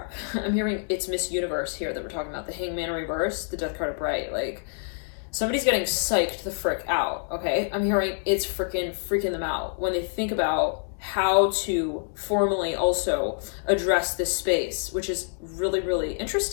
I'm hearing it's Miss Universe here that we're talking about. The Hangman in reverse, the Death card upright. Like, somebody's getting psyched the frick out, okay? I'm hearing it's freaking them out when they think about how to formally also address this space, which is really, really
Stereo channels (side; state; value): right; silent; digital silence